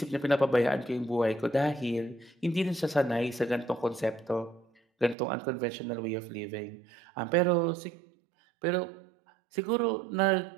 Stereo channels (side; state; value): left; drops out; at 5.2 s